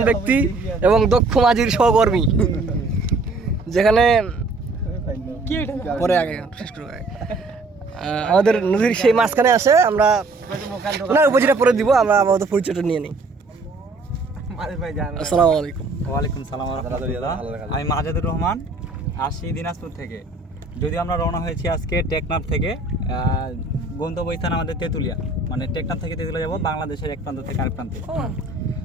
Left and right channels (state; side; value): quieter; left; 3.4 dB